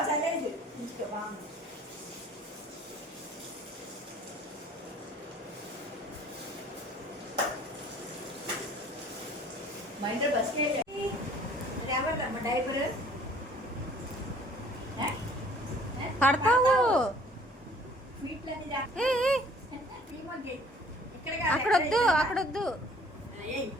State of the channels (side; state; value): both; normal; correlation 0.54